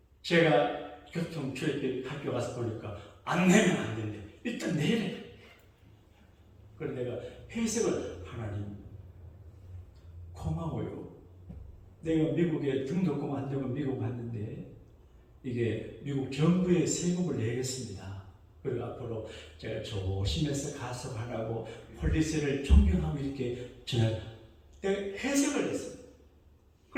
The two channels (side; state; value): both; identical; correlation 1.00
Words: 제가 교통출입 학교 가서 보니까 안 내면 안 된대. 일단 내래. 그래서 내가 해석을 하나님 고마워요. 내가 미국에 등록금 안 되고 미국 갔는데 이게 미국 정부에 세금을 내겠습니다. 그리고 앞으로 제가 조심해서 가석하라고 폴리스를 존경하고 이렇게 저는 해석을 했습니다.